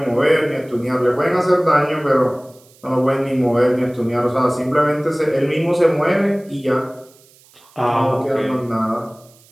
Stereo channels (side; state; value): right; noise; hiss, 28 dB below the sound